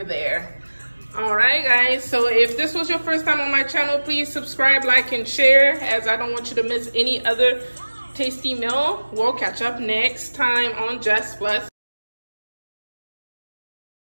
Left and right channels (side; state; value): both; inverted; correlation -1.00